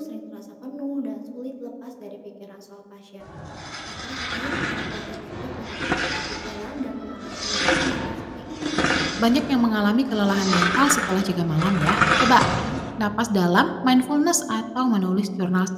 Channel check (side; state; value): both; identical; correlation 1.00